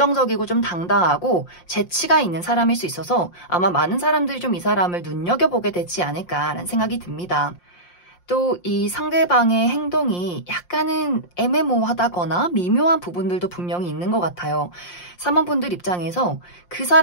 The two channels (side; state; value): right; late; 5.7 ms